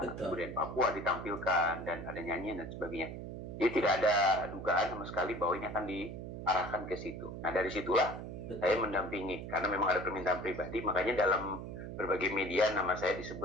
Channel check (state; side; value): noise; right; hum, 8 dB below the sound